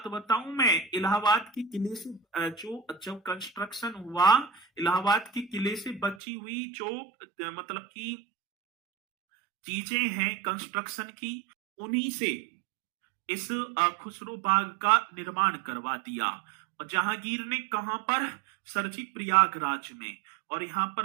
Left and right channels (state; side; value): drops out; left; at 6.2 s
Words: बताऊं मैं, इलाहाबाद के किले से जो जब कंस्ट्रक्शन हुआ, इलाहाबाद के किले से बची हुई जो मतलब की चीजें हैं कंस्ट्रक्शन की, उन्हीं से इस खुसरो बाग का निर्माण करवा दिया। और जहांगीर ने कहां पर? सरजी प्रयागराज में। और यहाँ